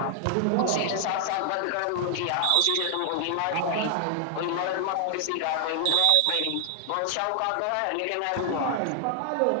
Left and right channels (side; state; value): both; different; correlation 0.00